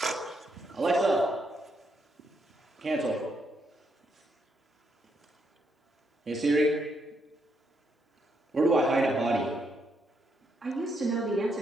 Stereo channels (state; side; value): normal; both; correlation 0.77